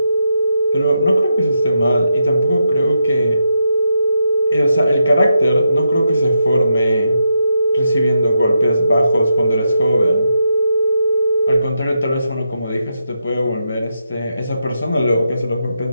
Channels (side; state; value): both; inverted; correlation -0.83